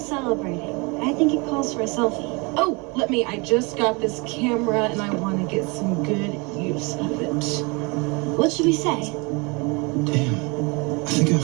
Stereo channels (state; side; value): quieter; left; 28.9 dB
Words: I think it calls for a selfie. Oh, I just got this camera and I want to get some good use of it. What should we say? Damn, I think I